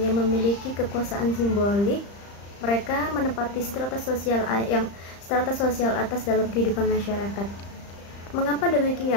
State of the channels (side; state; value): right; late; 35 ms